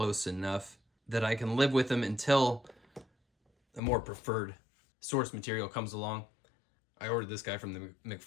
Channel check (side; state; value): right; drops out; at 3.8 s